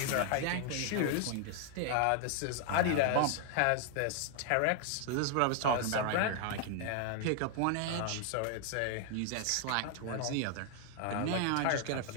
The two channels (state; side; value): different; both; correlation 0.00